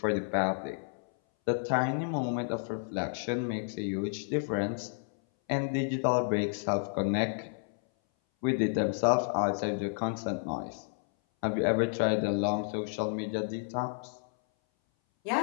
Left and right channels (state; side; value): silent; right; 57 dB below the other